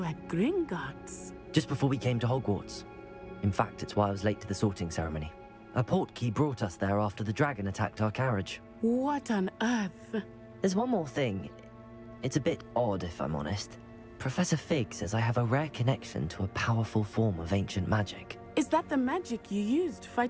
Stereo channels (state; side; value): identical; both; correlation 1.00